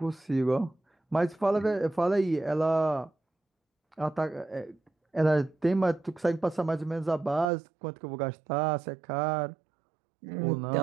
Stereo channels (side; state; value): left; drops out; at 7.5 s